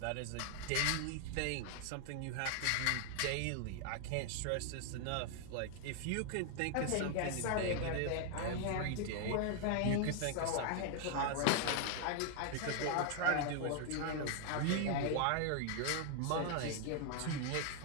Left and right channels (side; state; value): both; different; correlation 0.00